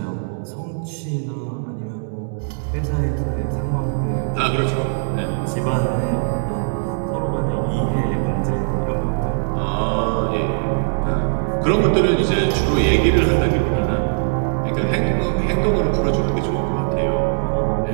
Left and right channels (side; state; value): left; silent; 65 dB below the other